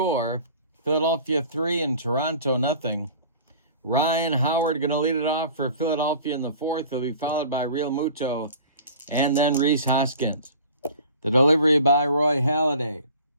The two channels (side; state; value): both; inverted; correlation -0.44